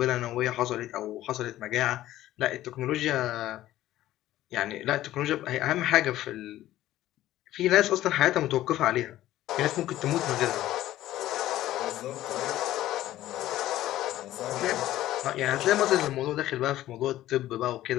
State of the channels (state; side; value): quieter; right; 14.3 dB